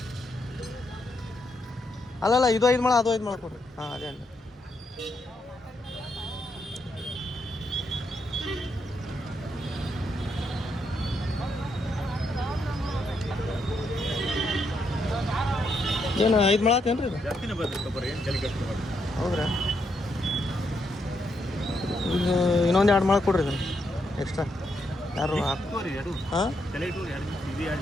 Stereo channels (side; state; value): both; normal; correlation 0.79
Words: ಅಲ್ಲಲ್ಲ, ಇದು 5 ಮೊಳ ಅದು 5 ಮೊಳ ಕೊಡ್ರಿ. ಅದೇ ಅಂడి. ಏನು 5 ಮೊಳ ಆತೇನ್ರಿ ಇದು? ಹೌದ್ರಾ? ಇನ್ನೊಂದು 2 ಮೊಳ ಕೊಡ್ರಿ ಇದನ್ನು ಎಕ್ಸ್ಟ್ರಾ. ಯಾರು? ಹಾಂ,